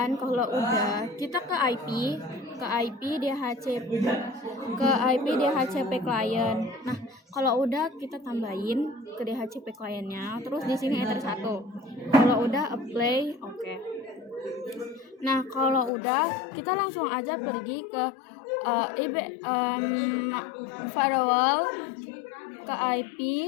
kalau udah kita ke IP DHCP client. Nah, kalau udah kita tambahin ke DHCP clientnya, terus di sini enter 1. Kalau udah apply, oke. Nah, kalau udah kita langsung aja pergi ke firewall, ke IP,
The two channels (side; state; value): right; drops out; at 15.9 s